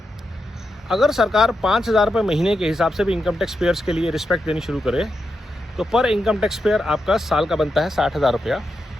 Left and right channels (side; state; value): both; normal; correlation 0.86